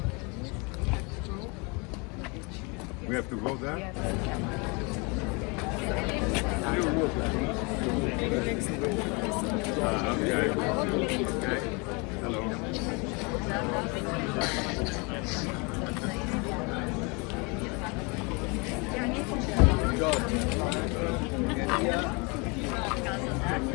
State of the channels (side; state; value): right; quieter; 30.1 dB